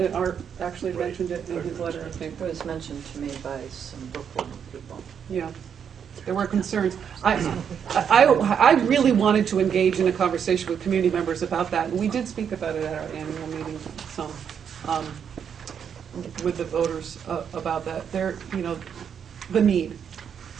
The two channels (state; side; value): quieter; left; 7.8 dB